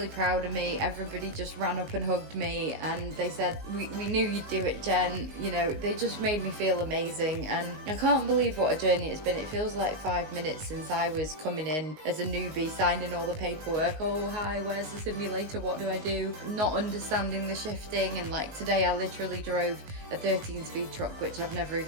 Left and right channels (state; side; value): late; left; 19 ms